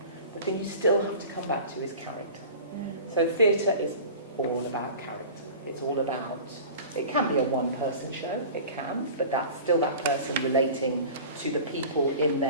the thing you still have to come back to is character. So theatre is all about character. It's all about, it can be a one-person show, it can, but that's still that person relating to the people in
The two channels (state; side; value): inverted; both; correlation -0.39